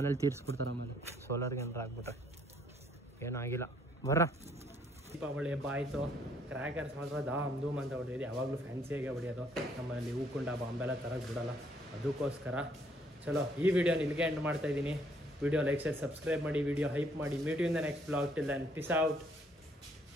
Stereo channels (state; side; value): normal; both; correlation 0.66